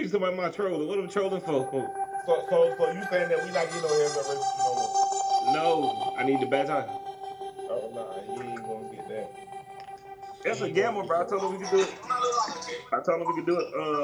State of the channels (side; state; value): both; identical; correlation 1.00